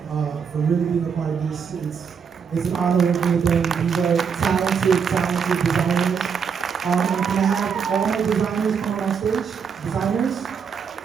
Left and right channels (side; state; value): left; quieter; 6.6 dB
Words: for really being a part of this. It's an honor working with them. These are talented designers. And can I have all my designers come on stage? Designers?